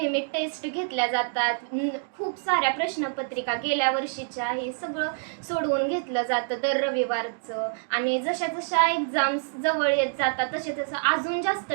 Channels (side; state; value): left; silent; digital silence